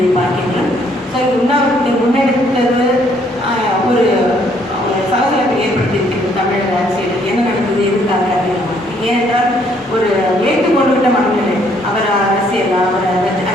பார்க்கின்றோம். ஸோ உண்ணாவிரத்தை முன்னெடுத்தது ஒரு சலசலப்பை ஏற்படுத்தியிருக்கிறது தமிழக அரசியல். என்ன நடந்தது, எதுக்காக அப்படின்னு. ஏனென்றால் ஒரு ஏற்றுக்கொண்டுவிட்ட மனநிலை, அவர் அரசியல் அவரை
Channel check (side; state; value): both; normal; correlation 0.66